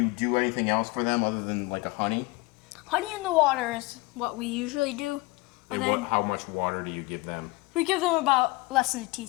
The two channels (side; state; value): right; quieter; 23.4 dB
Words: do anything else for them other than like a honey? Honey in the water is what we usually do. Or And then how much water do you give them? we give them about less than a